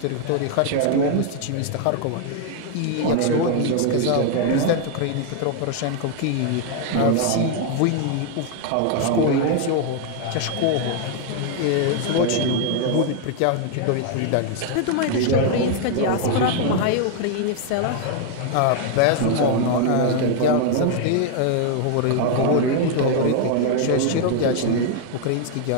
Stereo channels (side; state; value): both; different; correlation 0.00